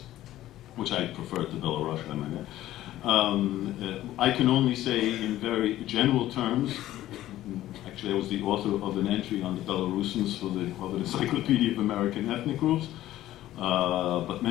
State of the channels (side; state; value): right; quieter; 14.2 dB